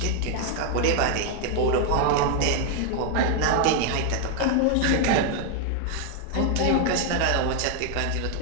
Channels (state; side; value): different; both; correlation 0.00